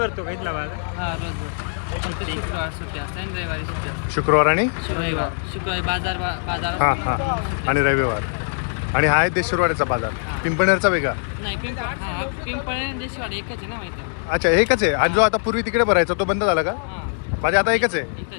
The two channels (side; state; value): right; silent; digital silence